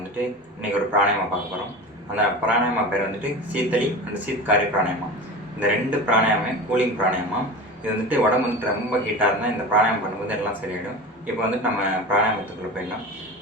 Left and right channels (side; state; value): both; normal; correlation 0.31